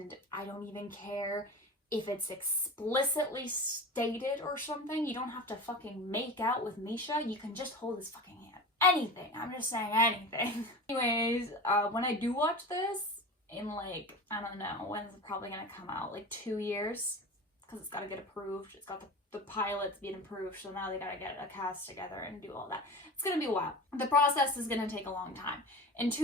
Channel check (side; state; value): both; normal; correlation 0.32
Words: I don't even care if it's explicitly stated or something. You don't have to fucking make out with Misha. You can just hold his fucking hand. Anything. I'm just saying anything. Anyways, when I do watch this, in like, I don't know, when's it probably gonna come out? Like 2 years? Because it's gotta get approved. It's got the pilot's being approved, so now they gotta get a cast together and do all that. It's gonna be a while. The process is gonna take a long time. In